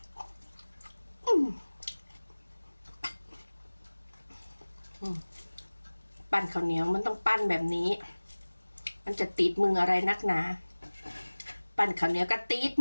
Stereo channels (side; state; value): both; inverted; correlation -1.00